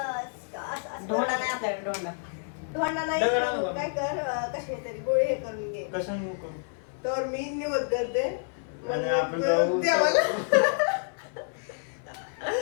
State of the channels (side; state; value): right; silent; 59 dB below the other